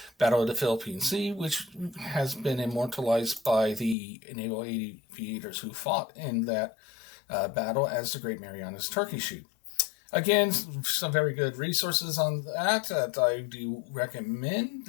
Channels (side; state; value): right; drops out; at 4.0 s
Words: Battle of the Philippine Sea, which has been immortalized by the naval aviators who fought in that battle as the Great Marianas Turkey Shoot. Again, some very good resources on that I do recommend